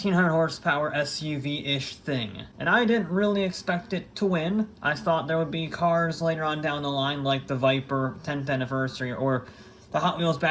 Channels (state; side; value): identical; both; correlation 1.00